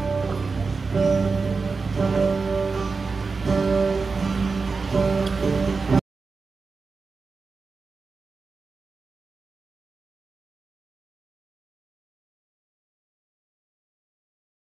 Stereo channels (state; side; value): quieter; left; 4.5 dB